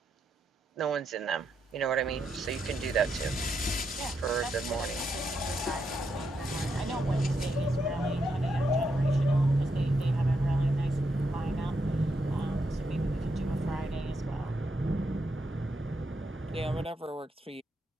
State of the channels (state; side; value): normal; both; correlation 0.81